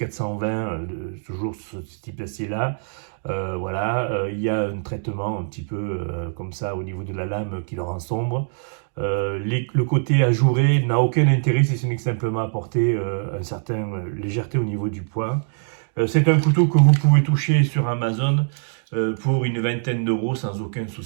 toujours ce type d'acier-là. Voilà, il y a un traitement un petit peu comme ça au niveau de la lame qui le rend sombre. Le côté ajouré n'a aucun intérêt si ce n'est que simplement apporter une certaine légèreté au niveau du poing. C'est un couteau que vous pouvez toucher sur Amazon pour une vingtaine d'euros sans aucun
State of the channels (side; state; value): left; silent; digital silence